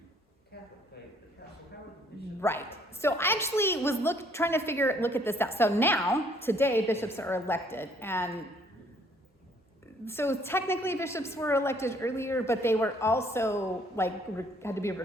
Catholic faith? How were the bishops? Right. So I actually was trying to look at this out. So now, today, bishops are elected, and so technically bishops were elected earlier, but they were also had to be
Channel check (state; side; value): normal; both; correlation 0.63